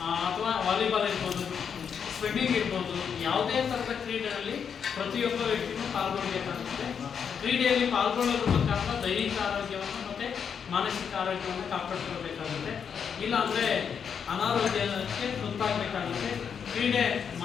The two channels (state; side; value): quieter; right; 7.1 dB